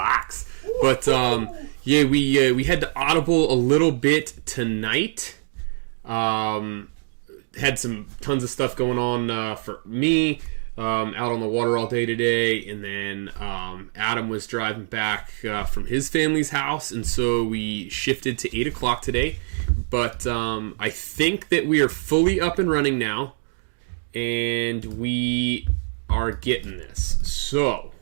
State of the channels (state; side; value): silent; left; digital silence